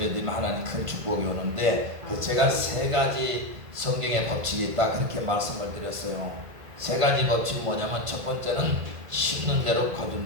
하나님 큰 축복이 오는데, 제가 세 가지 성경의 법칙이 있다 그렇게 말씀을 드렸어요. 세 가지 법칙이 뭐냐면, 첫 번째는 심는 대로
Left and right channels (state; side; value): late; left; 1.5 ms